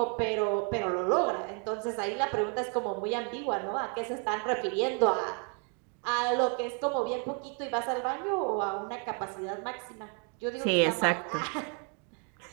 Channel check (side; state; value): left; quieter; 39.1 dB